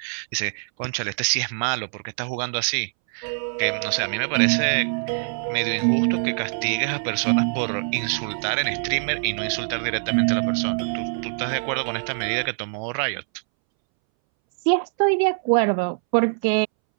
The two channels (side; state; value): left; silent; 63 dB below the other